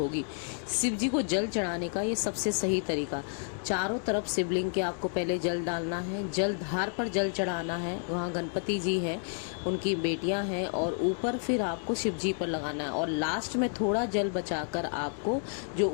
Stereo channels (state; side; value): silent; right; 58 dB below the other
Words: शिव जी को जल चढ़ाने का ये सबसे सही तरीका, चारों तरफ शिवलिंग के आपको पहले जल डालना है, जल धार पर जल चढ़ाना है। वहाँ गणपति जी हैं, उनकी बेटियां हैं, और ऊपर फिर आपको शिव जी पर लगाना है। और लास्ट में थोड़ा जल बचाकर आपको जो